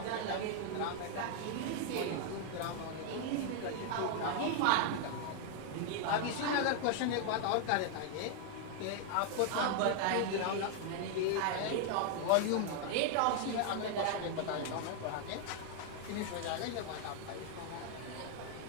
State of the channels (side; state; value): both; different; correlation 0.00